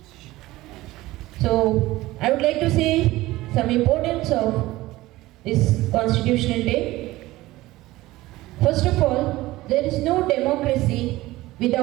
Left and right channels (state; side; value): quieter; left; 17.9 dB